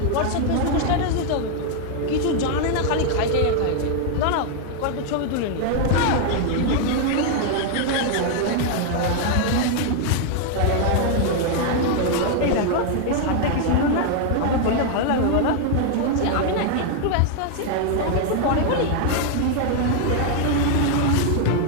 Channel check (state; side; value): different; both; correlation 0.00